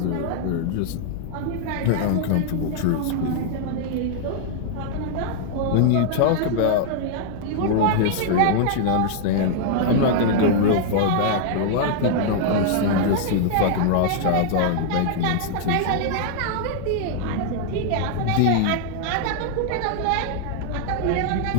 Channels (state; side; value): different; both; correlation 0.00